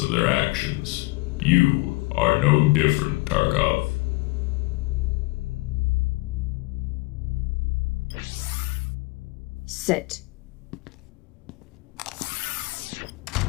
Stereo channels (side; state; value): right; quieter; 23.9 dB